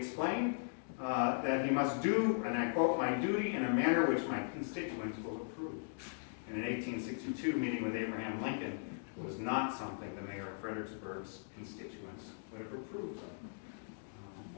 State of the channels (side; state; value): right; silent; digital silence